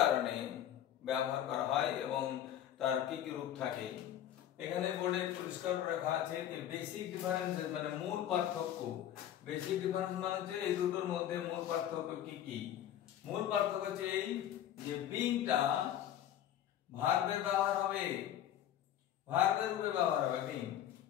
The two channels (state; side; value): quieter; right; 11.2 dB